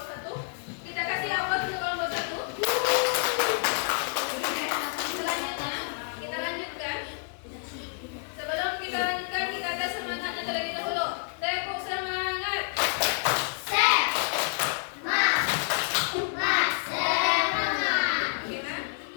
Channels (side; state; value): right; silent; 58 dB below the other